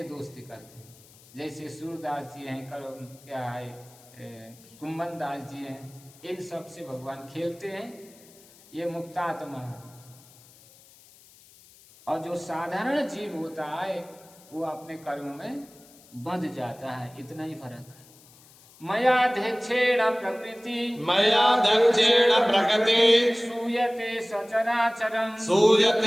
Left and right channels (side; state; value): left; noise; hiss, 25 dB below the sound